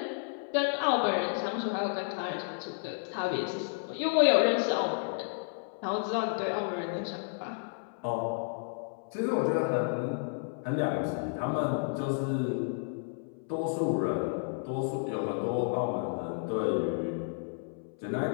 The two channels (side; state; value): right; silent; 57 dB below the other